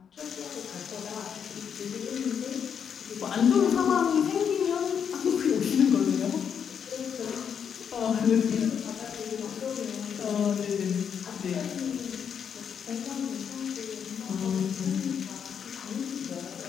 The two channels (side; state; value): right; quieter; 7.6 dB